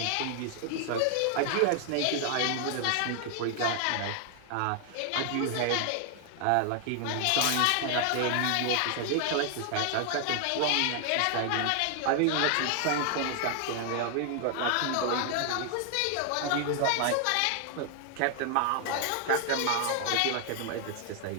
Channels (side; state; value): both; different; correlation 0.00